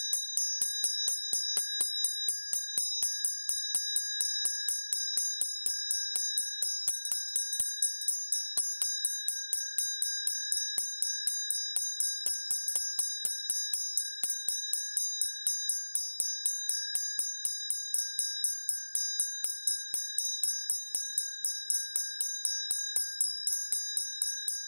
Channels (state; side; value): inverted; both; correlation -1.00